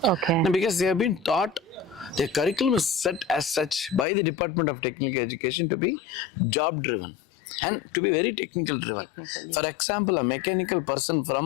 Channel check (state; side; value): drops out; right; at 4.0 s